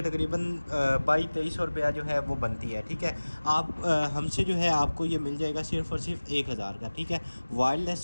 तकरीबन 2200 रुपया जो है वो बनती है। ठीक है, आप हमसे जो है आपको ये मिल जाएगा सिर्फ़ और सिर्फ 1000 का। ठीक है, वायरलेस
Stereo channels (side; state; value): both; inverted; correlation -1.00